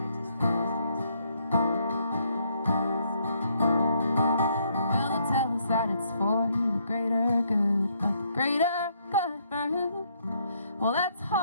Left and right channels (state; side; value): inverted; both; correlation -0.71